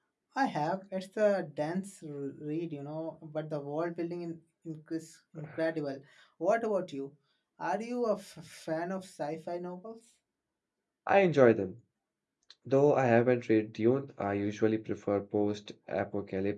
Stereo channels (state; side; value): identical; both; correlation 1.00